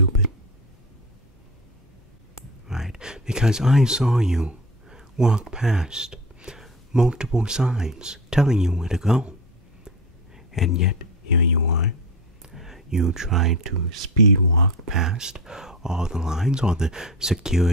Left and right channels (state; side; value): normal; both; correlation 0.29